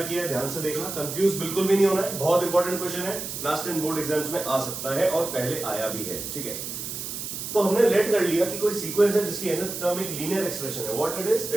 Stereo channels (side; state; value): right; noise; hiss, 6 dB below the sound